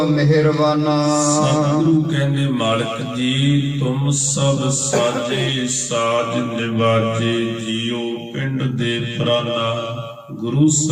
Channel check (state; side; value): identical; both; correlation 1.00